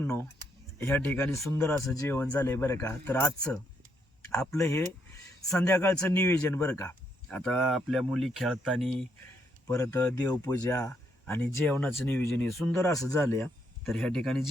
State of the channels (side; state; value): both; normal; correlation 0.75